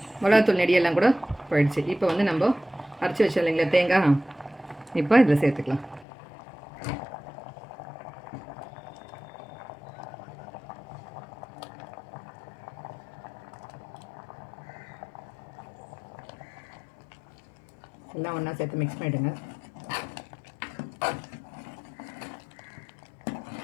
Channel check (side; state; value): right; drops out; at 6.1 s